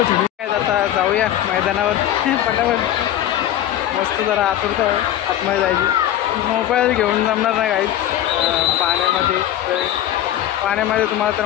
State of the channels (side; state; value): right; quieter; 12.2 dB